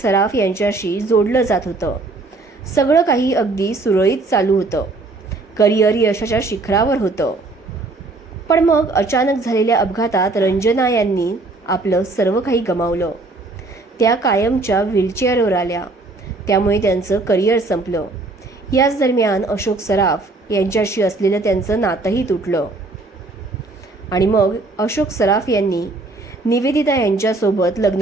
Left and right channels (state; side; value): quieter; left; 3.3 dB